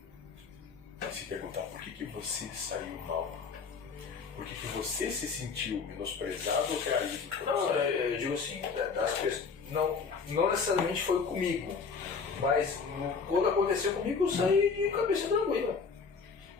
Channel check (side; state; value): right; quieter; 5.3 dB